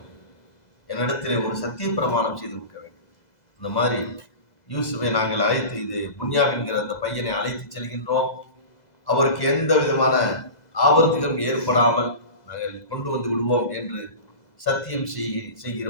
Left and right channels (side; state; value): right; late; 2.0 ms